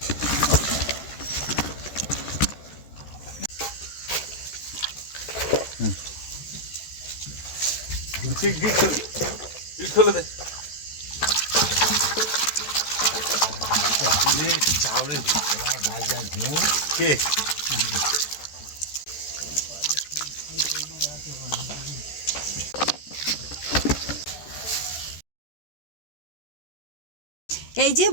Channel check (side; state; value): right; late; 14 ms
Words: খুলে দে কে এই যে